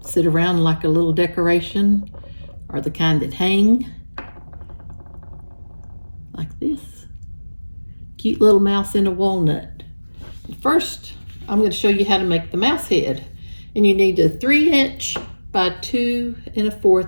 sit around like a little decoration, or the kind that hang like this. Cute little mouse in a walnut. First, I'm going to show you how to make the mouse head. And you need a 3" by 2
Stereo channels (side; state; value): both; inverted; correlation -1.00